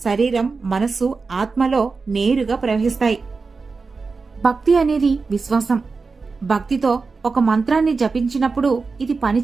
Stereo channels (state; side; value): quieter; left; 4.4 dB